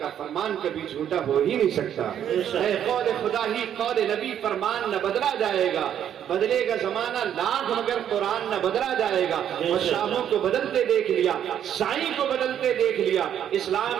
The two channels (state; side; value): quieter; left; 9.8 dB